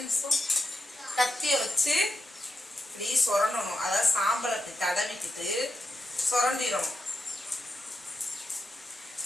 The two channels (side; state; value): both; normal; correlation 0.88